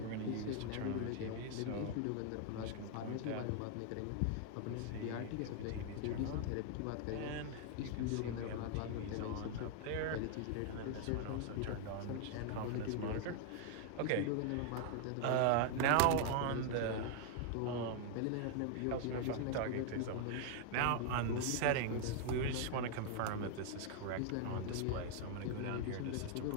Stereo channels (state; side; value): different; both; correlation 0.00